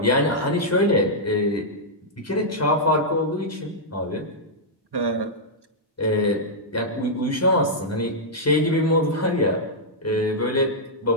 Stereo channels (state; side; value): normal; both; correlation -0.09